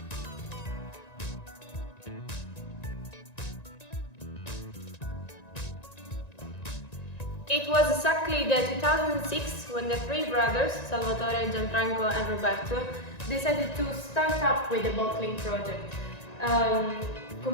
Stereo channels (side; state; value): right; late; 1.9 ms